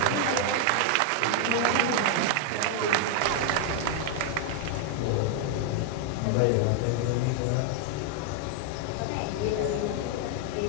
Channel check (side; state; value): both; different; correlation 0.00